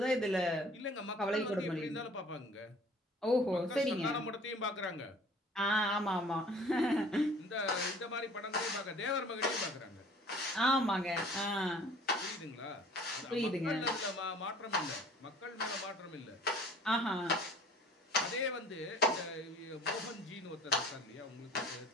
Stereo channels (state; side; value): normal; both; correlation 0.51